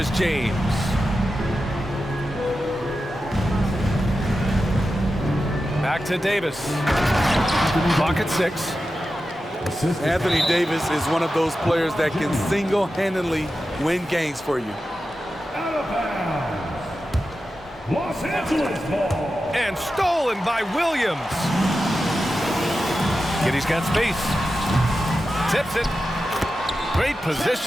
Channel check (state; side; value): normal; both; correlation 0.92